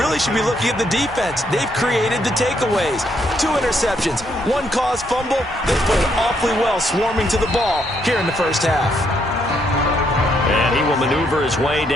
should be looking at the defense. They've created the takeaways. 2 interceptions, 1 caused fumble. They played awfully well swarming to the ball here in the first half. And he will maneuver his way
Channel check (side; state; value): both; normal; correlation 0.73